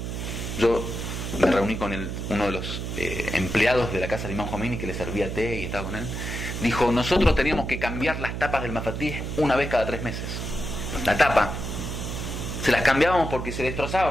yo me reuní con uno de los empleados de la casa del Imam Khomeini que le servía té y estaba con él. Dijo, nosotros teníamos que cambiar las tapas del Mafatih una vez cada 3 meses. La tapa se las cambiábamos porque se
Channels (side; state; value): right; noise; hum, 5 dB below the sound